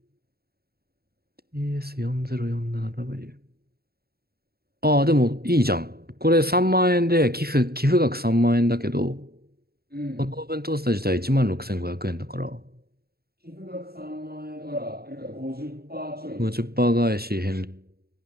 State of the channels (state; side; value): late; left; 0.45 ms